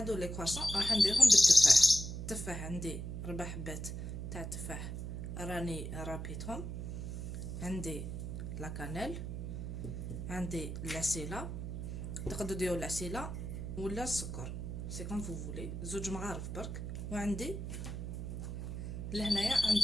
لي كواسون راح نديرهم بالتفاح. التفاح عندي 4 حبات تاع التفاح راني رابيتهم. عندي لا كانيل، عندي لاسيلا، تقدروا ديروا لاسيلا ولا السكر سي كوم فو فولي، 2 مغارف برك. وعندي لهنايا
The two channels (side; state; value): right; noise; hum, 5 dB below the sound